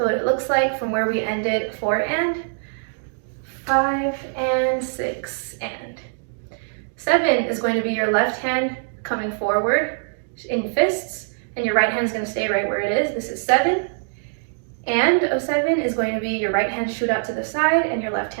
what it looks like from where we ended 4 and, 5 and 6 and. 7 is going to be your left hand coming forward in fists, and your right hand is going to stay right where it is. This is 7. And of 7 is going to be your right hand shoot out to the side, and your left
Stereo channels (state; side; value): silent; left; digital silence